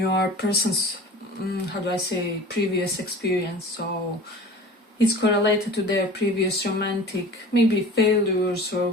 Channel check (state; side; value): normal; both; correlation 0.40